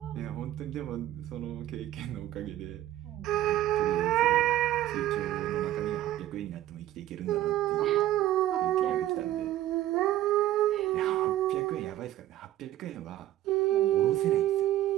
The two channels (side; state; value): left; quieter; 13.7 dB